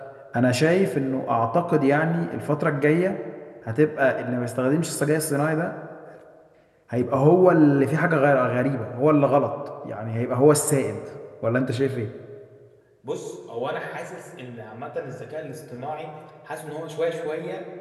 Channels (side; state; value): both; identical; correlation 1.00